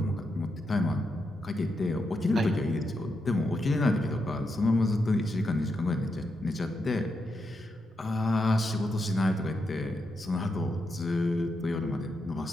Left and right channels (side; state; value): both; normal; correlation 0.84